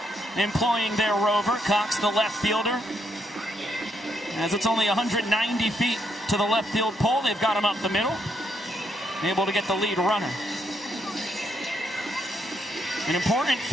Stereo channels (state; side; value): normal; both; correlation 0.76